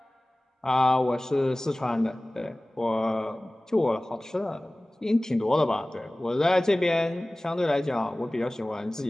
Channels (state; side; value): normal; both; correlation 0.98